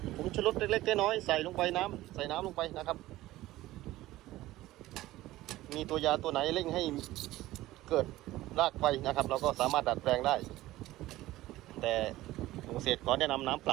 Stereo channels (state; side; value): quieter; left; 16.5 dB